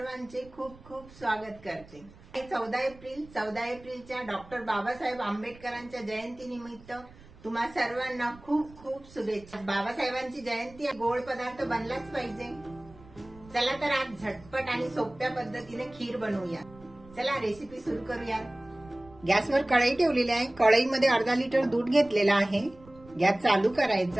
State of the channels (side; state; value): right; noise; rumble, 22 dB below the sound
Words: खूप खूप स्वागत करते. 14 एप्रिलच्या डॉक्टर बाबासाहेब आंबेडकरांच्या जयंतीनिमित्त तुम्हा सर्वांना खूप खूप शुभेच्छा. बाबासाहेबांची जयंती गोड पदार्थ बनलाच पाहिजे. चला तर आज झटपट आणि सोप्या पद्धतीने खीर बनवूया. चला रेसिपी सुरू करूया. गॅसवर कढई ठेवलेली आहे. कढईमध्ये अर्धा लिटर दूध घेतलेला आहे. गॅस चालू